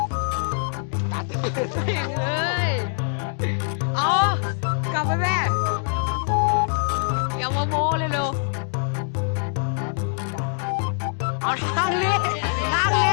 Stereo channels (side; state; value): right; silent; digital silence